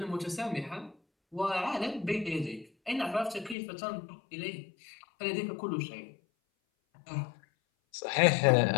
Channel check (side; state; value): right; drops out; at 3.6 s